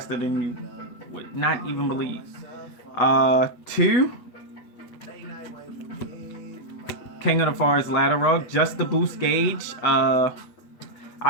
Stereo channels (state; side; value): late; right; 8.4 ms